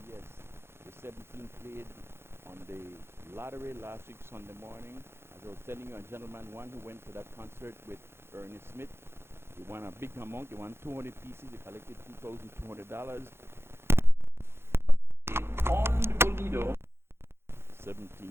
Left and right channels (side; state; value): left; late; 0.12 ms